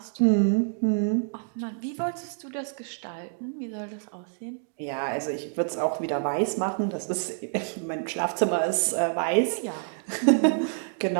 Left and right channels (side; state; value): left; silent; digital silence